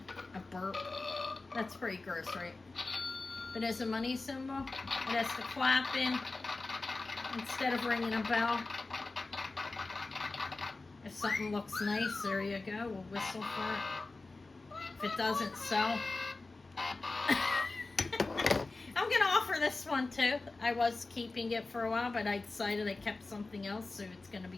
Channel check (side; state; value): right; quieter; 3.5 dB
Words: a burp. That's pretty gross, right? But as a money symbol, it has to clap in instead of ringing a bell. If something looks nice, there you go. We'll whistle for it. If it doesn't sell, I'm going to offer this one too. I was keeping it for a while, but I decided I kept something else, so it's going to